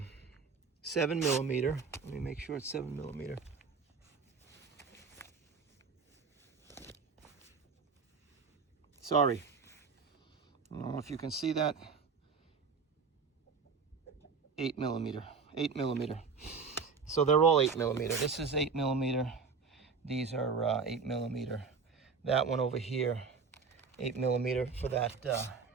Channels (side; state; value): left; quieter; 5.2 dB